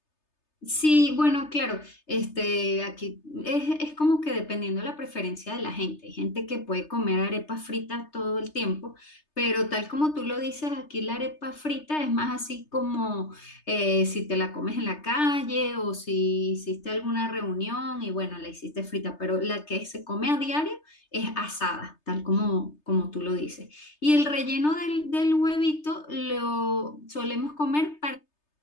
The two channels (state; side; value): late; right; 3.3 ms